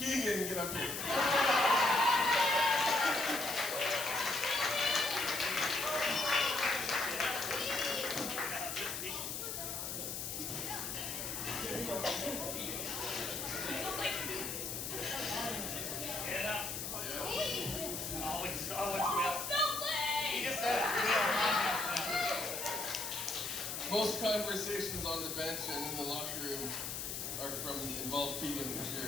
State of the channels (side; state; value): left; noise; hiss, 4 dB below the sound